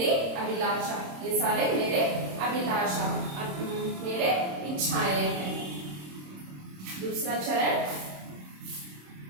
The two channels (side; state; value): left; late; 26 ms